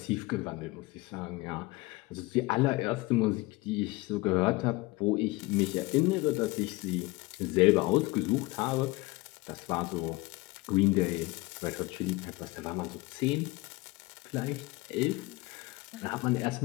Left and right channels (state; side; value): quieter; right; 21.7 dB